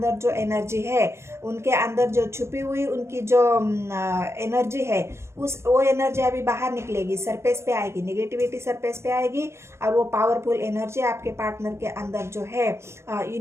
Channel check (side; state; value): left; late; 0.13 ms